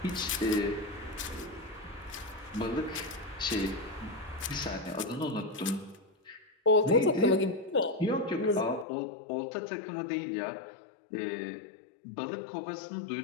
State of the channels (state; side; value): drops out; right; at 8.8 s